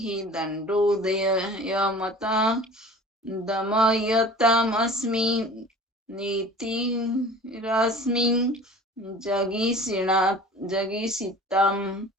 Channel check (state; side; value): normal; both; correlation 0.43